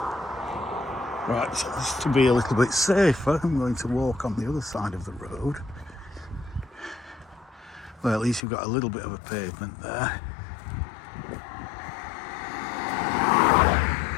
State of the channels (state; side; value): drops out; right; at 8.4 s